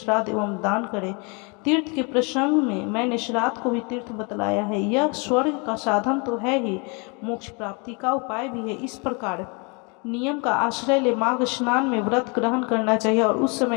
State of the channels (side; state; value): right; quieter; 32.3 dB